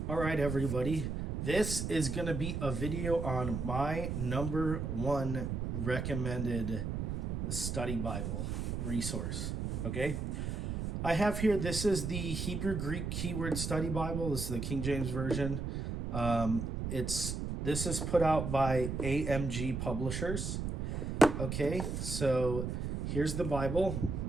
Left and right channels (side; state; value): right; noise; rumble, 3 dB below the sound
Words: All right, everybody. This is going to be a video on my number one recommended study Bible resource. Okay. I have here, this is the Hebrew Greek Keyword Study Bible. This is the King James Version. This is put out by AMG Publishers. Okay. So here's the Bible.